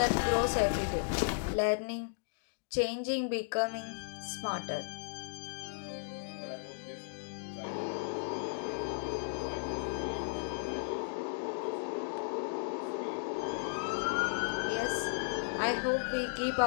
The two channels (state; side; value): silent; right; digital silence